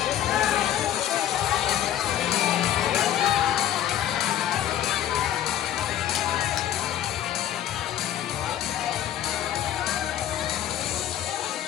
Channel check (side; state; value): right; quieter; 11.4 dB